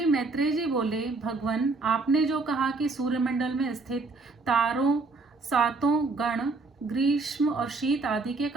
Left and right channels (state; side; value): quieter; left; 3.7 dB